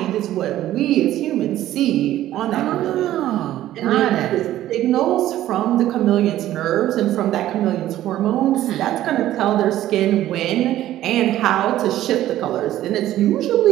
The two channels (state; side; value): quieter; left; 13.6 dB